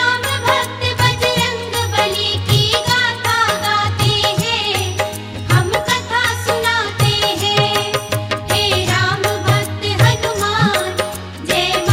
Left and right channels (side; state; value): both; identical; correlation 1.00